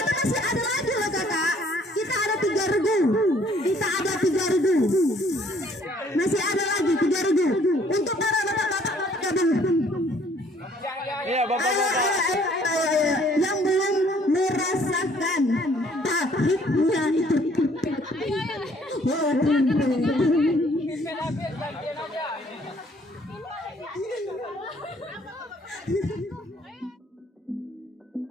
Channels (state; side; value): normal; both; correlation 0.61